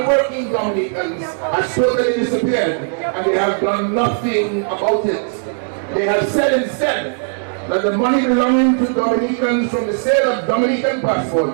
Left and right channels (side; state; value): left; silent; digital silence